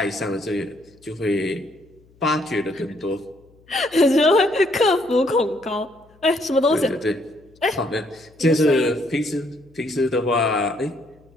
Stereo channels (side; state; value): left; noise; hum, 30 dB below the sound